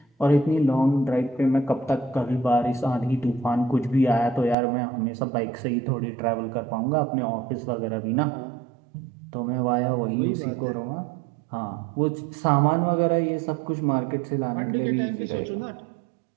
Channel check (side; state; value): left; drops out; at 4.5 s